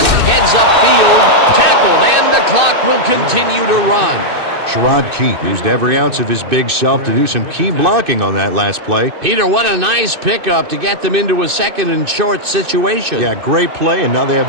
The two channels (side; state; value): left; late; 2.6 ms